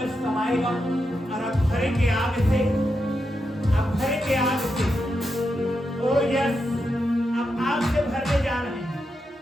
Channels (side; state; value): both; normal; correlation 0.86